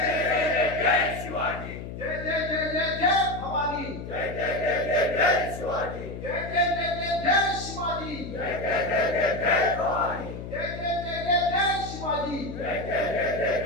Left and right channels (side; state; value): left; noise; hum, 9 dB below the sound